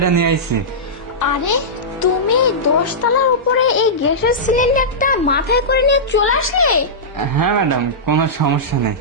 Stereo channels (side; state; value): both; normal; correlation -0.14